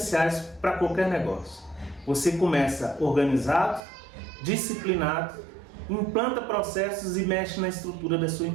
para qualquer negócio. Você começa organizado, disciplinado, implanta processos e mexe na estrutura da sua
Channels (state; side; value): drops out; left; at 3.8 s